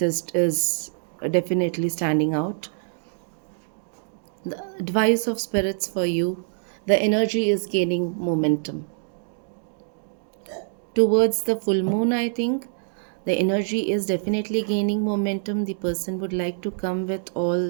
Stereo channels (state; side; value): silent; left; digital silence